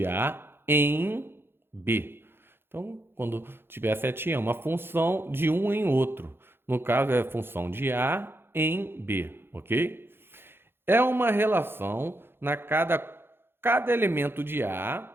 A em B. Então, quando tiver a setinha, é uma função de um em outro. No caso, é a função de A em B, ok? É uma relação na cada elemento de A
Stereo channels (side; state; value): left; late; 0.11 ms